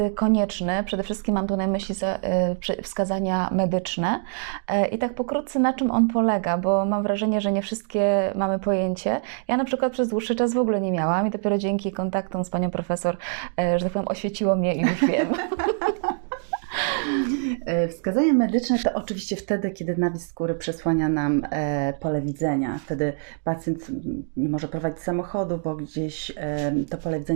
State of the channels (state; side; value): silent; left; 62 dB below the other